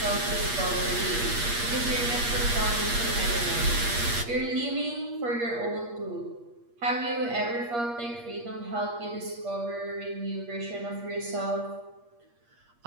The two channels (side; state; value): left; late; 8.5 ms